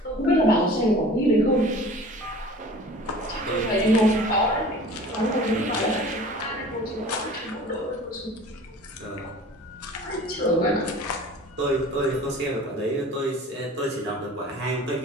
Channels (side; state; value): both; normal; correlation 0.43